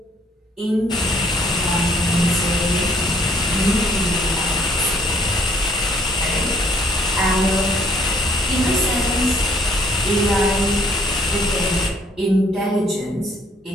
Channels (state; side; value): normal; both; correlation 0.63